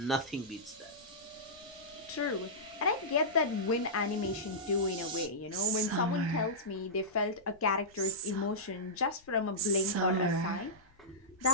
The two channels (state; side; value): noise; left; rumble, 29 dB below the sound